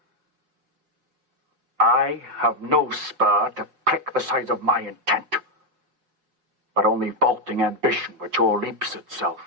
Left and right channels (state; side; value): late; left; 5.7 ms